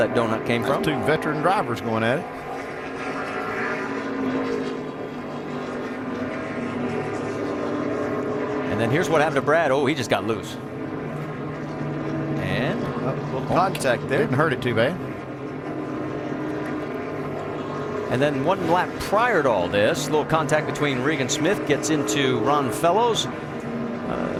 donut came from. 2 veteran drivers going at it. And then here's what happened to Brad. Oh, he just got loose. And a little contact there. Didn't hurt it too bad. And then 1 lap prior to all this, a little contact between Regan Smith gets into Ron Fellows.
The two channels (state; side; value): identical; both; correlation 1.00